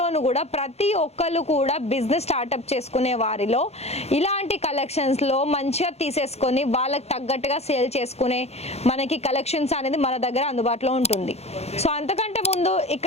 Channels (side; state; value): right; late; 0.31 ms